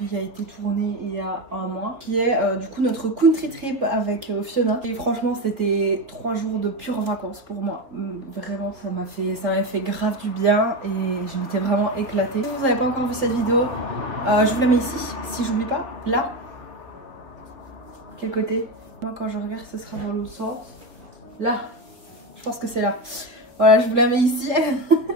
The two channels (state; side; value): late; left; 3.9 ms